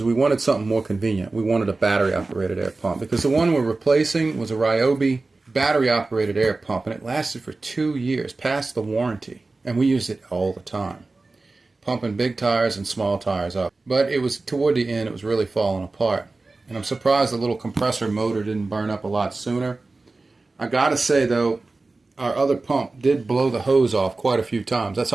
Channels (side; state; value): left; quieter; 3.5 dB